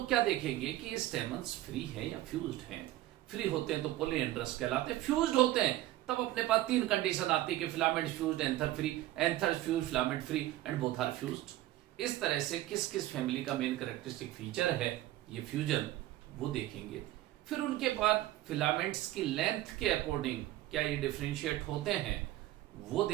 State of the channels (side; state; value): left; quieter; 15.3 dB